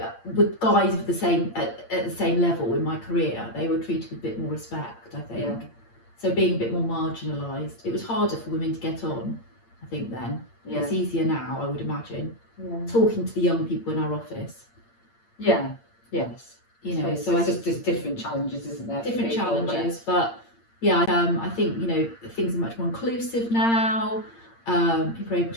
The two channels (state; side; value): late; right; 8.7 ms